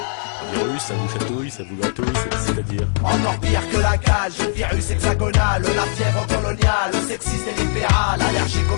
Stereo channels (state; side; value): silent; right; digital silence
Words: Un virus, ça vous chatouille, ça vous gratouille, c'est-à-dire Encore pire que la cage, le virus hexagonal, la fièvre coloniale, sexiste et libéral, allergique aux